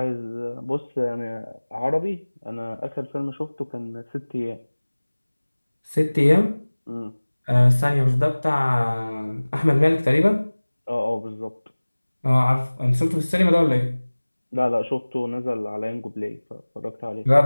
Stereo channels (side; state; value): both; inverted; correlation -1.00